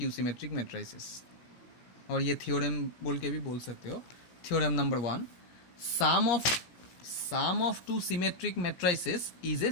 symmetric matrices. और ये थ्योरम बोल के भी बोल सकते हो. Theorem number 1, sum of two symmetric matrices is a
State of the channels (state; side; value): late; right; 17 ms